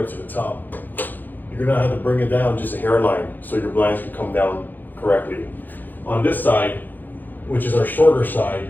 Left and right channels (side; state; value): right; late; 0.087 ms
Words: to the top. You're gonna have to bring it down just a hairline so your blinds can come down correctly. On this side, which is our shorter